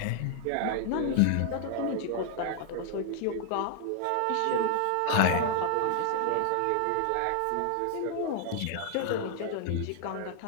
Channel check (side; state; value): both; different; correlation 0.00